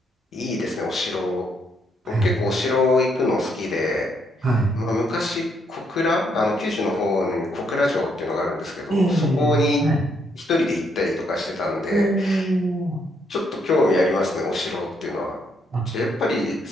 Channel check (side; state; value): both; normal; correlation 0.74